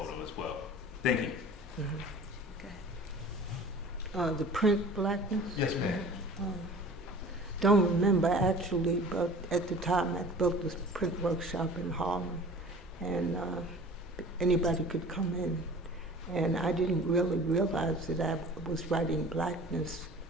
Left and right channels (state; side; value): normal; both; correlation 0.43